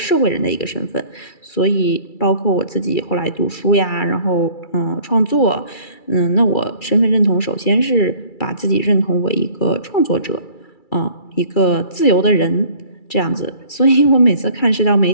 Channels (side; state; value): right; late; 2.3 ms